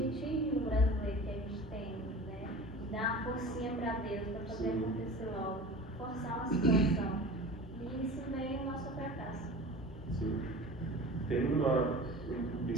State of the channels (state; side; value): normal; both; correlation 0.38